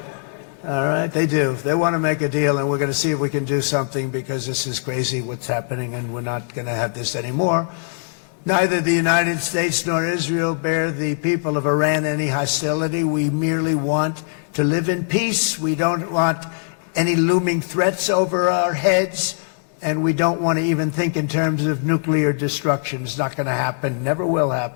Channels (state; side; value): silent; right; 65 dB below the other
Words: All right, they do. They want to make a deal, and we're going to see if we can do something, because this is crazy what's happening, and we're not going to have this anymore. Neither the United States nor Israel bear the people of Iran any hostility. We merely want to live in peace. We don't want any looming threats over our heads, and we don't want to even think in terms of nuclear destruction. It's not going to happen, never will